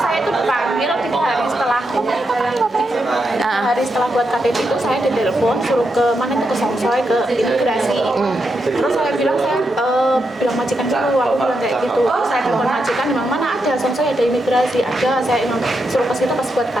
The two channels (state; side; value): normal; both; correlation 0.84